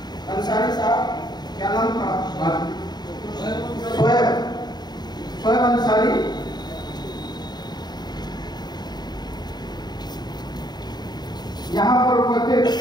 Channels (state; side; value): late; right; 0.20 ms